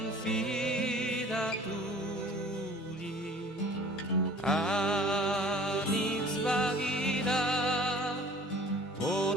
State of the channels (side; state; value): both; normal; correlation 0.48